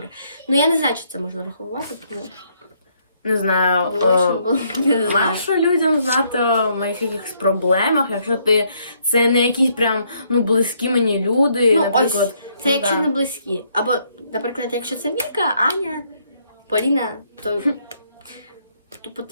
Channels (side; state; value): both; inverted; correlation -0.70